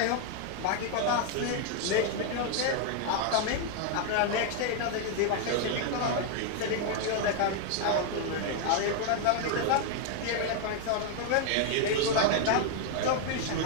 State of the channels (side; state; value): both; different; correlation 0.00